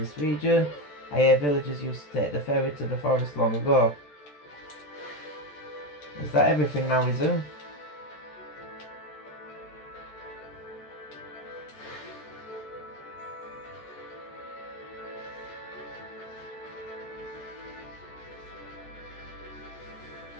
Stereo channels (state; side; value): late; right; 14 ms